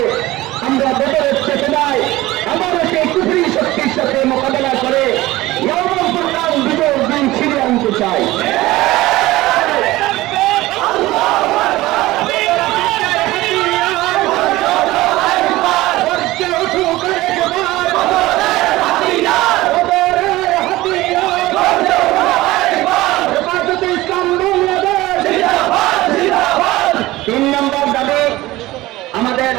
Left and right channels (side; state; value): left; quieter; 18.1 dB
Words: আমরা বদরের চেতনায় আবারও সেই কুফরি শক্তির সাথে মোকাবেলা করে বিজয়ের দিন ছিঁড়ে আনতে চাই